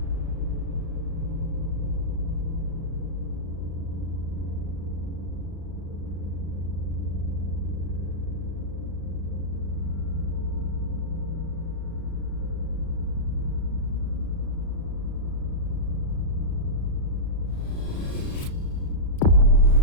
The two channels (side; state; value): right; late; 36 ms